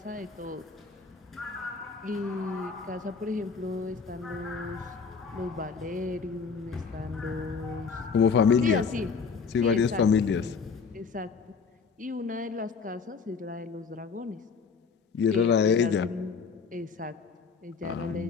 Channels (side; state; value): right; quieter; 5.3 dB